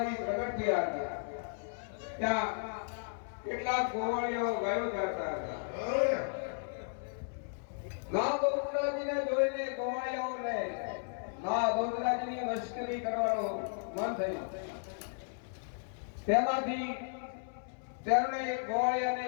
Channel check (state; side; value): silent; right; 55 dB below the other